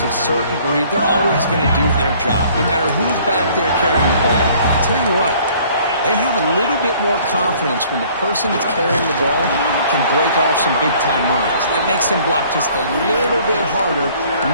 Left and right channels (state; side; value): inverted; both; correlation -0.56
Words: a certain breed. They're always going to do their job, no matter who's back there carrying the ball. I'll tell you what, they have a little bit more confidence when the person that's carrying the ball can break off some big-time runs. It makes them block just a little bit harder,